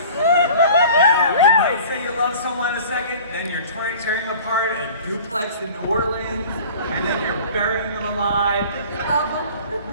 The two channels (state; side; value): inverted; both; correlation -0.44